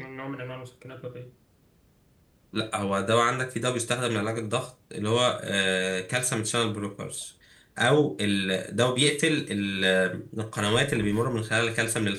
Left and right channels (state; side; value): identical; both; correlation 1.00